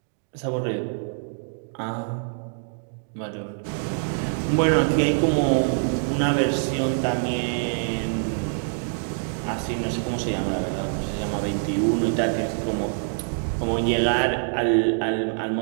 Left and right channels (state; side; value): silent; left; digital silence